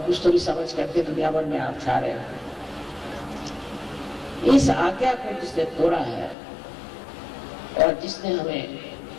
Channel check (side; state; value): right; drops out; at 6.4 s